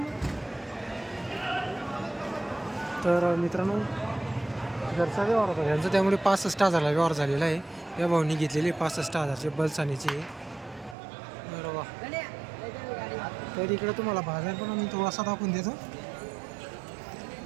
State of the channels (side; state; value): left; drops out; at 11.0 s